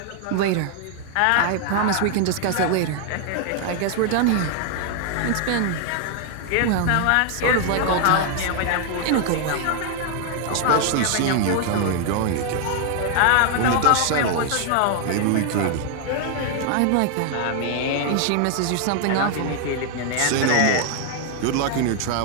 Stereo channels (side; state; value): both; different; correlation 0.00